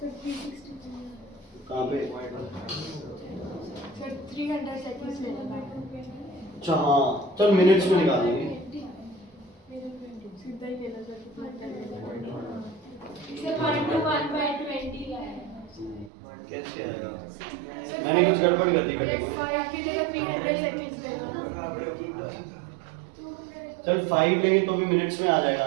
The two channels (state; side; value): drops out; left; at 16.1 s